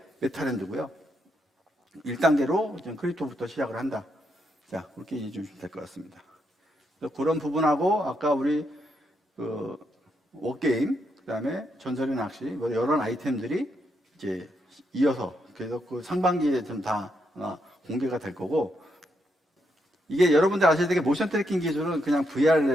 메타랜드고요. 1단계로 크립토부터 시작을 한다. 자, 그렇게 이해해 주시면 될 것 같습니다. 그런 부분하고 아까 우리 워게임, 그 다음에 전설의 낚시, 이런 아이템들이 이제 이어서 그래서 그 상반기에 좀 다 공개가 될 거고 이게 여러분들 아셔야 되게 모션 트래킹 기술은 그냥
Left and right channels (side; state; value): both; normal; correlation 0.79